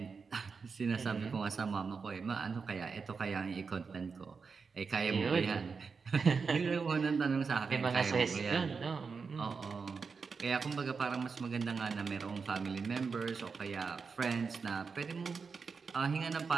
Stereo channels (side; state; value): left; quieter; 5.2 dB